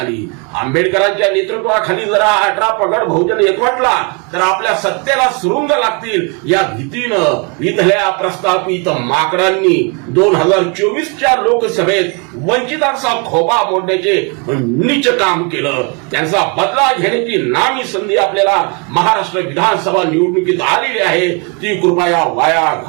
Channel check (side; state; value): left; quieter; 33.0 dB